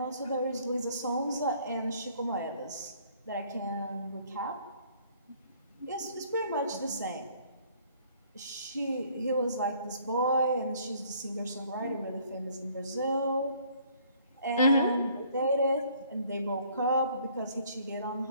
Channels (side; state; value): both; inverted; correlation -0.60